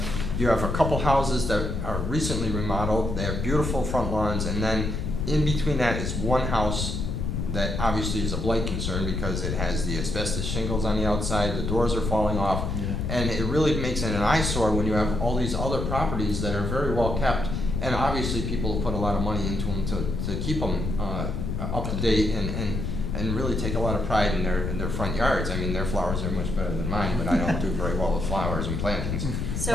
have a couple houses that are recently remodeled. They have beautiful front lawns, and then in between that is one house that obviously is a blight concern because it has the asbestos shingles on the outside, the doors are falling off, and it really makes it an eyesore when you have all these other properties that are very well kept, and obviously people have put a lot of money into them to keep them up to date and really take a lot of pride in their front yards. I mean, their flowers are much better than mine, but I don't do very well with flowers and plantings.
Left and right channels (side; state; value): left; noise; rumble, 2 dB below the sound